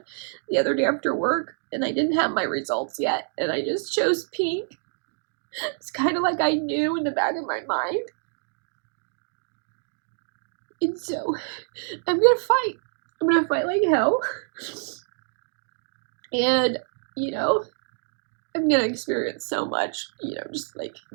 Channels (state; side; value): silent; left; 59 dB below the other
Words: the other day after work, and I didn't have my results yet, and I just chose pink. It's kind of like I knew in the back of my mind. And so I'm gonna fight. I'm gonna fight like hell. And, you know, I'm gonna experience so much, you know, just like